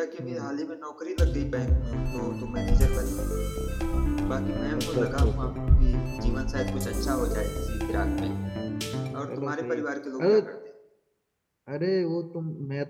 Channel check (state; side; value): identical; both; correlation 1.00